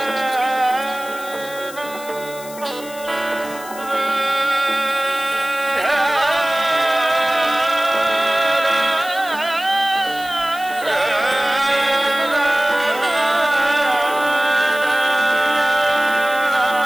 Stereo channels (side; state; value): left; noise; hiss, 16 dB below the sound